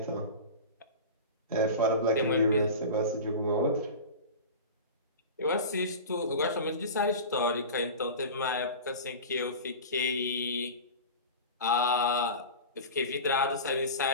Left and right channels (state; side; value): inverted; both; correlation -0.31